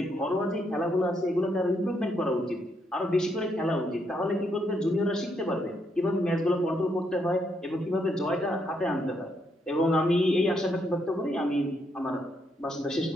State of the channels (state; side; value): normal; both; correlation 0.76